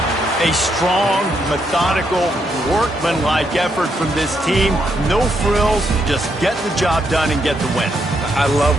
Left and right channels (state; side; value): normal; both; correlation 0.77